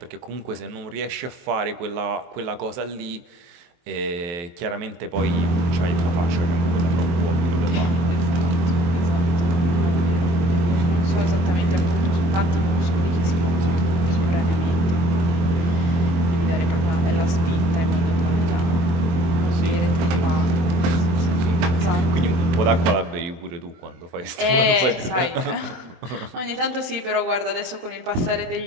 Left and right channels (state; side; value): late; left; 22 ms